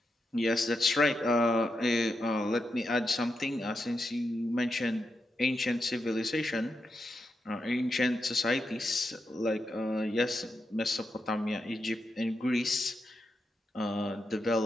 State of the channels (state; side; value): normal; both; correlation 0.85